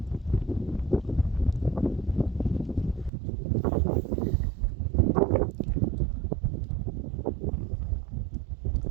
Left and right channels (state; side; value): drops out; left; at 3.1 s